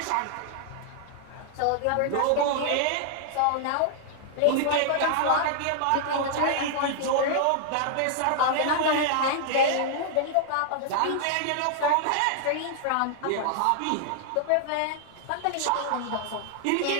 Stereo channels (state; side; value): different; both; correlation -0.01